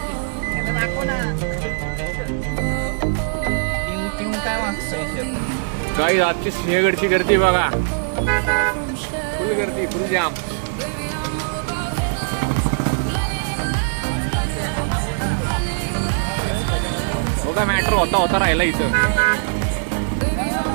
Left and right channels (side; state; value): left; silent; digital silence